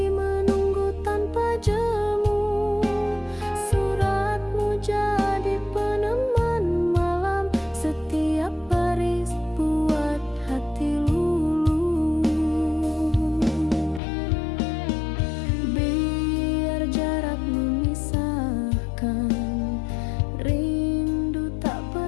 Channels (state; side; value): drops out; right; at 14.0 s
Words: menunggu tanpa jemu, suratmu jadi peneman malam. Setiap baris buat hati luluh. Biar jarak memisahkan, rindu tak